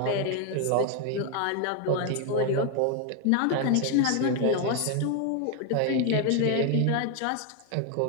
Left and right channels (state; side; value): different; both; correlation 0.01